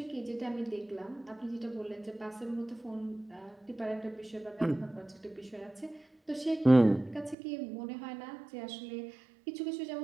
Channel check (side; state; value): left; drops out; at 7.4 s